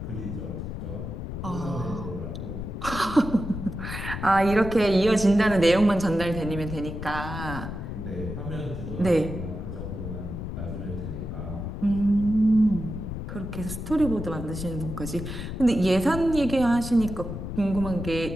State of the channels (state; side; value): noise; left; rumble, 6 dB below the sound